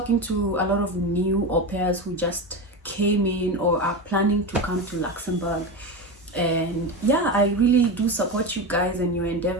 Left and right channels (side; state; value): both; normal; correlation 0.21